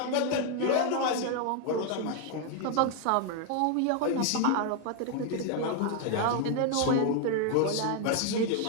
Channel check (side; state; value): both; different; correlation 0.00